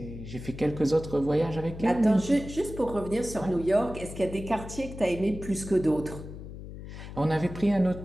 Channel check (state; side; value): noise; left; hum, 12 dB below the sound